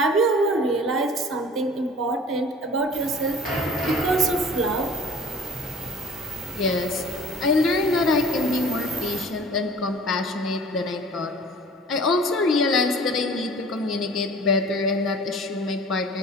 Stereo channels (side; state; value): both; normal; correlation 0.46